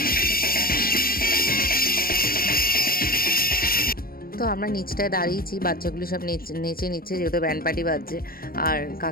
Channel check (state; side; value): late; right; 0.43 ms